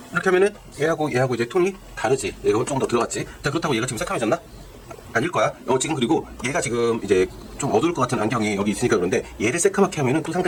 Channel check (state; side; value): identical; both; correlation 1.00